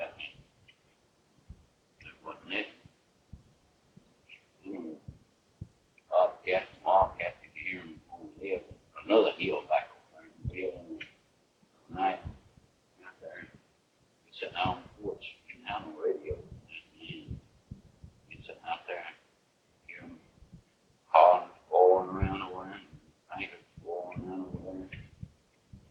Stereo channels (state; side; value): identical; both; correlation 1.00